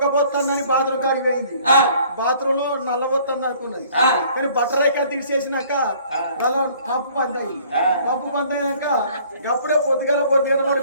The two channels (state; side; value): inverted; both; correlation -0.56